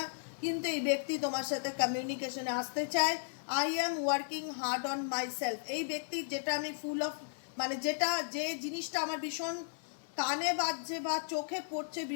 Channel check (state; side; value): silent; right; digital silence